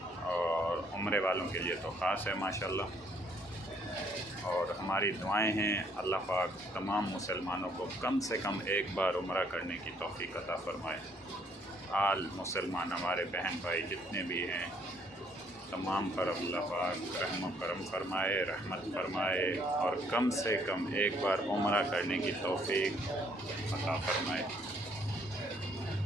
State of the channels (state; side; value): normal; both; correlation 0.66